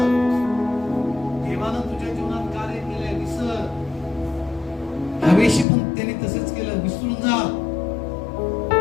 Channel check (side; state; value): right; drops out; at 5.7 s